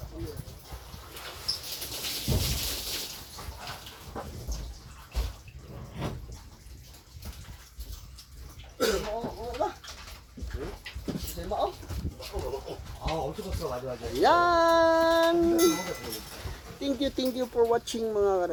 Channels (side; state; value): both; identical; correlation 1.00